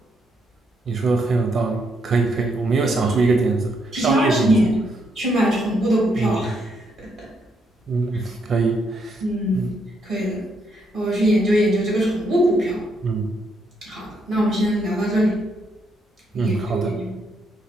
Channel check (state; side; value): normal; both; correlation 0.76